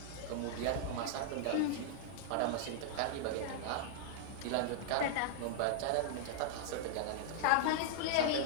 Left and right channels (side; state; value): both; different; correlation -0.01